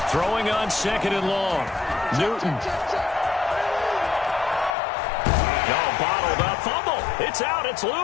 Throwing on 2nd and long. Newton. Bottled up, fumble. It's out, it's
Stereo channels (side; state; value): right; drops out; at 4.8 s